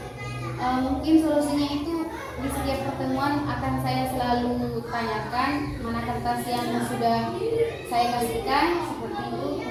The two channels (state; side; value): identical; both; correlation 1.00